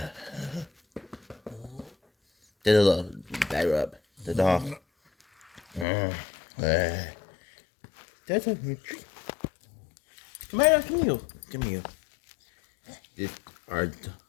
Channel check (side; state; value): right; drops out; at 5.9 s